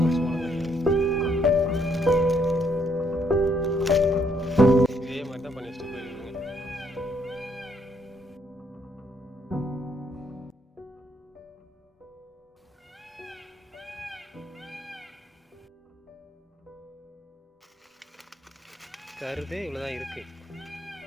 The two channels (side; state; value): both; normal; correlation 0.71